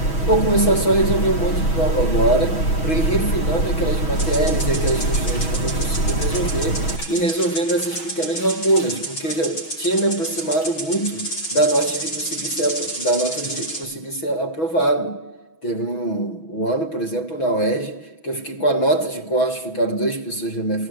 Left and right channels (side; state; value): right; late; 6.2 ms